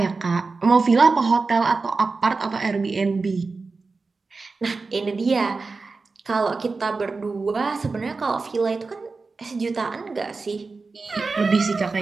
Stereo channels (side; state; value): left; quieter; 4.1 dB